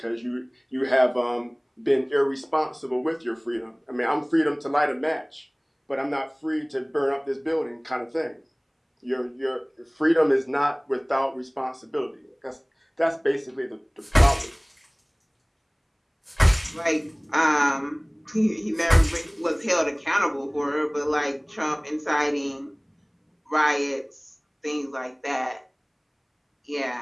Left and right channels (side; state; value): both; identical; correlation 1.00